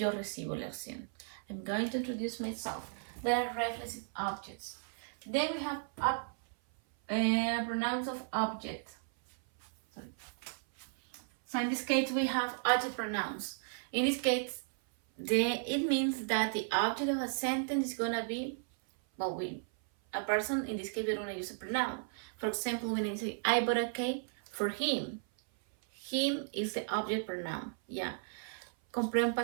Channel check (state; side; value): silent; left; 54 dB below the other